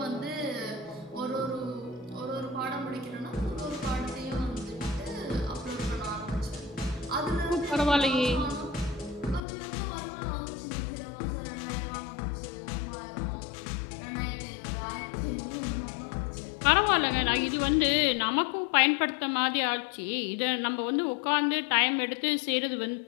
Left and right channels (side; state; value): right; drops out; at 9.5 s